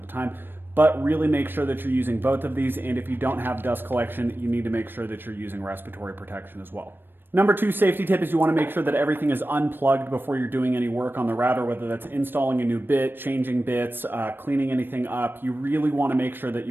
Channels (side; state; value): left; late; 0.097 ms